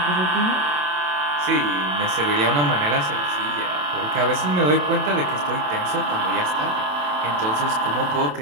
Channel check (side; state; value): left; late; 27 ms